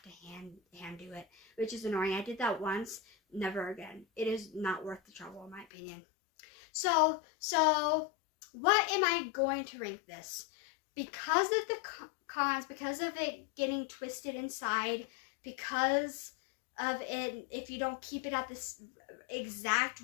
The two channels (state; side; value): drops out; right; at 5.7 s